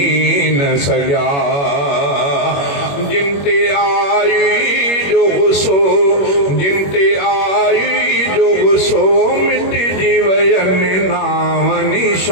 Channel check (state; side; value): late; right; 21 ms